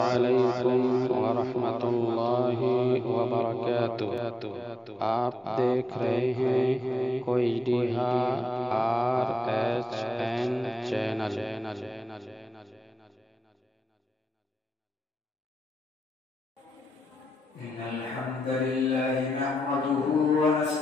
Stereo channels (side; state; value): both; normal; correlation 0.89